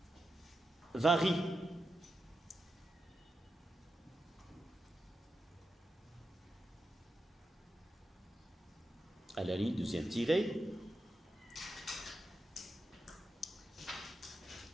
varie. À la ligne deuxième tirée,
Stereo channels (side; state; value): both; normal; correlation 0.88